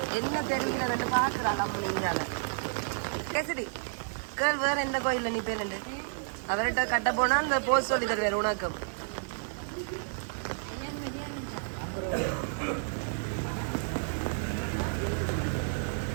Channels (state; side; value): silent; left; digital silence